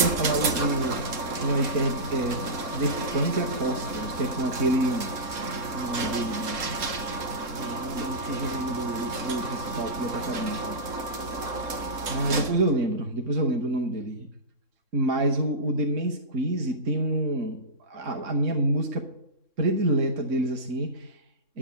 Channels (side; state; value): left; late; 3.7 ms